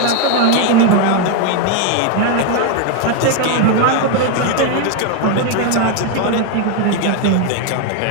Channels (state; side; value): different; both; correlation 0.01